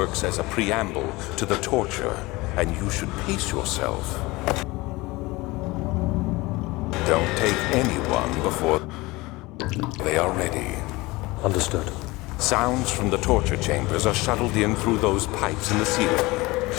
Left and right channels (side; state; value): right; quieter; 21.8 dB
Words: as a preamble to the torture, and you should pace yourself. Don't take anyone before they are ready. Understood. Sounds from the torture chambers are shuttled in through those pipes in the ceiling.